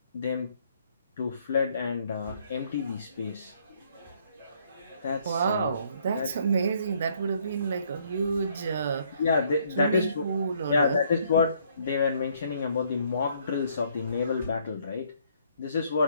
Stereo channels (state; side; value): inverted; both; correlation -0.67